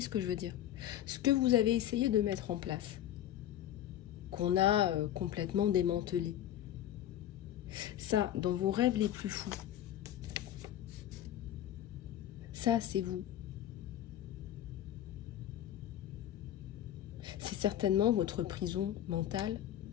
que je veux dire? Ce que vous avez essayé de mettre en place, qu'on a complètement démantelé, ça, dans vos rêves les plus fous, ça, c'est vous. C'est certainement votre prison mentale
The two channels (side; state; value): right; quieter; 11.8 dB